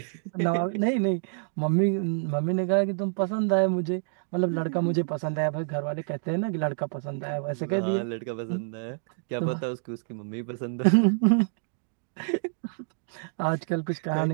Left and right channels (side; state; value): left; silent; digital silence